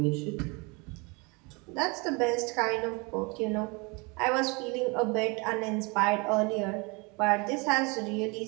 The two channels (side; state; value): left; quieter; 28.8 dB